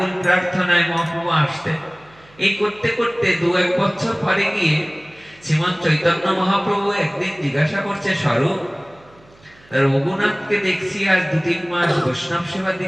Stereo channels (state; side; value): noise; right; hum, 28 dB below the sound